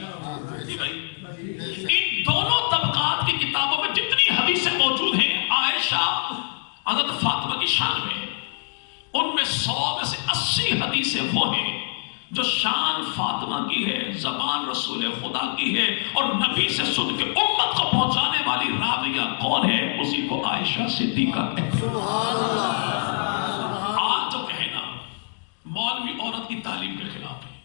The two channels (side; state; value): right; silent; digital silence